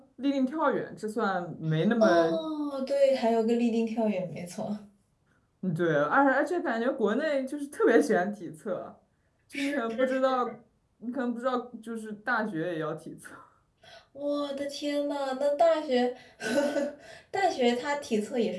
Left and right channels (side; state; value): both; identical; correlation 1.00